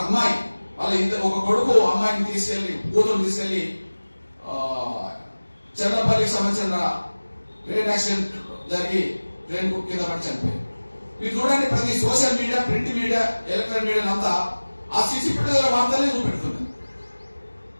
అమ్మాయి వాళ్ళ ఒక కొడుకు అమ్మాయిని తీసుకెళ్లి కూతురు తీసుకెళ్లి చెన్నపల్లికి సంబంధించిన ట్రైన్ యాక్సిడెంట్ జరిగి ట్రైన్ కింద పడి చనిపోయింది. మీరు చూడండి, ప్రతి social media, print media, electronic media అంతా ఆ సీసీ ఫుటేజ్ వార్తలే చూపెడుతుంది.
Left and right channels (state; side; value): inverted; both; correlation -1.00